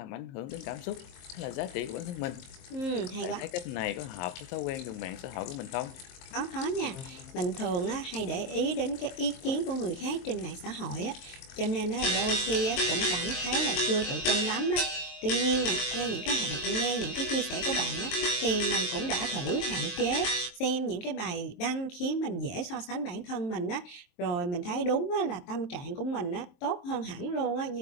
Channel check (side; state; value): right; late; 23 ms